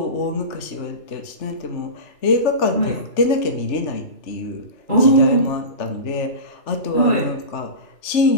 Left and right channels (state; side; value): late; right; 3.3 ms